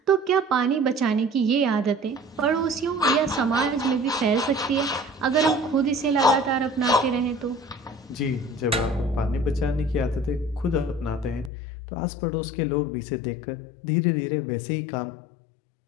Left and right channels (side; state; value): right; drops out; at 11.5 s